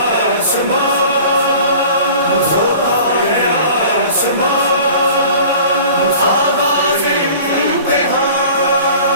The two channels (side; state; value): both; inverted; correlation -0.44